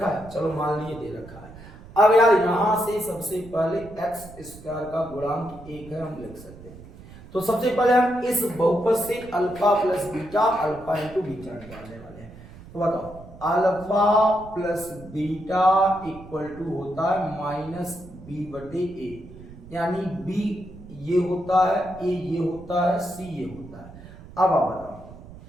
है, चलो मान लिए दे रखा है। अब यार यहां से सबसे पहले एक्स स्क्वायर का गुणांक 1 है, हम लिख सकते हैं। तो सबसे पहले हम इस बहुपद से alpha plus beta, alpha into beta निकालने वाले हैं। तो बताओ alpha plus beta equal to होता है माइनस बी बटे ए, यानी बी ये होता है, ए ये होता है, सी ये होता है। अब आप बताओ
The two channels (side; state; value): right; noise; rumble, 18 dB below the sound